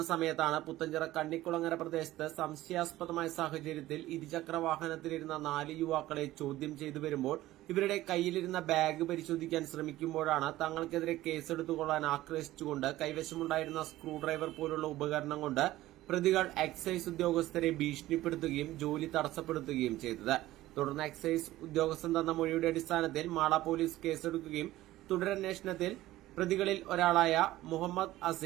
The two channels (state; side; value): quieter; left; 15.9 dB